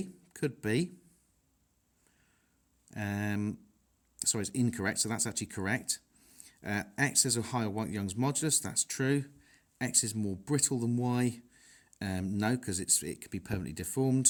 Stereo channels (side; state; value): both; identical; correlation 1.00